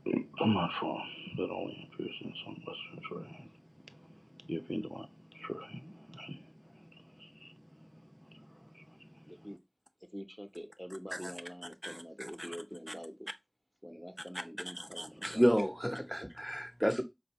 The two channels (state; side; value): identical; both; correlation 1.00